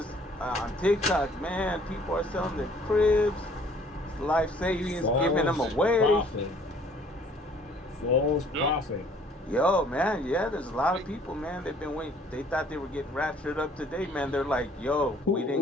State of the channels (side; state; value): both; normal; correlation 0.57